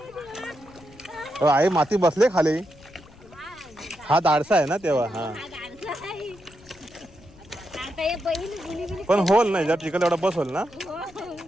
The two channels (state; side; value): noise; left; rumble, 24 dB below the sound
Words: आई माती बसले खाली. हा दाडसा आहे ना तेव्हा. हा पण होल नाही जर चिकन एवढा बस होल ना